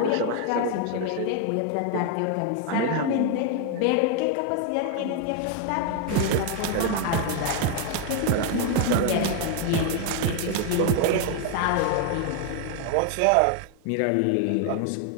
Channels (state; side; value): different; both; correlation 0.01